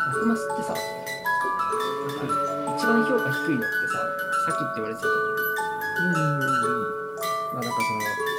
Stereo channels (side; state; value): both; identical; correlation 1.00